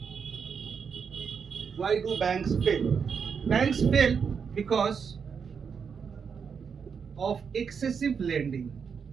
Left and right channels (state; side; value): quieter; left; 6.4 dB